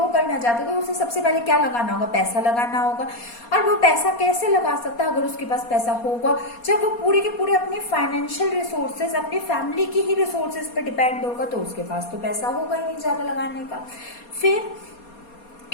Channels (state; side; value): late; right; 4.2 ms